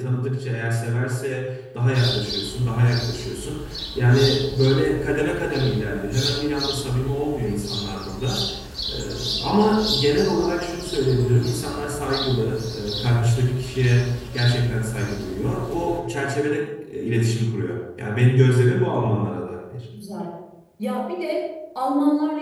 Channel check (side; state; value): both; identical; correlation 1.00